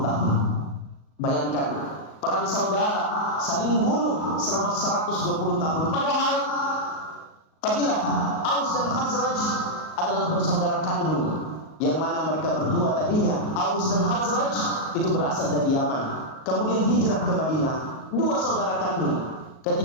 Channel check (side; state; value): right; late; 38 ms